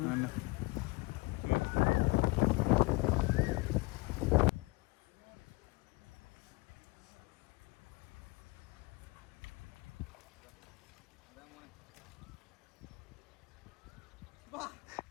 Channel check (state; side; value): quieter; right; 24.6 dB